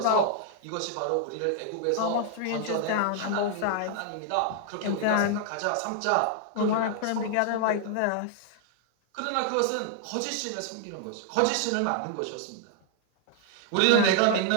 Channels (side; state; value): both; different; correlation 0.00